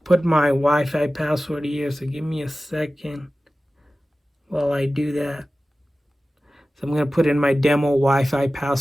put my Wi-Fi password here. So give me a second while I do that. So I'm going to put in my demo Wi-Fi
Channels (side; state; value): both; normal; correlation 0.96